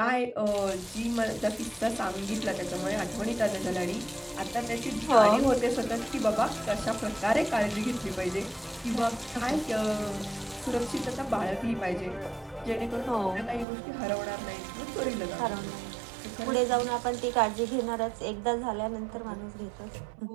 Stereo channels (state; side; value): drops out; left; at 13.7 s